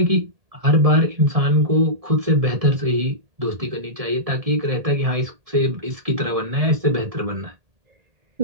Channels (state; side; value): late; left; 1.7 ms